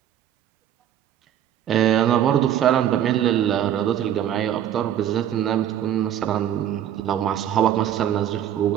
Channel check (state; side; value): quieter; left; 10.6 dB